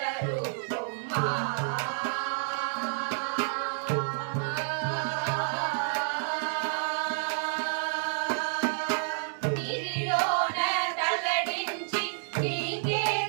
நீரிలోన తల్లడించి నీకే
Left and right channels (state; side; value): silent; left; digital silence